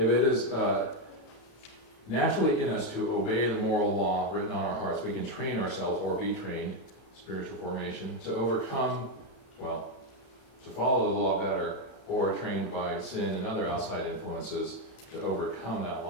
it is naturally in us to obey the moral law written on our hearts, we can train ourselves or be trained, spiritual formation, to overcome, well, to follow the law better, or trained by sin and other outside influences to overcome that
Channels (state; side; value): late; right; 31 ms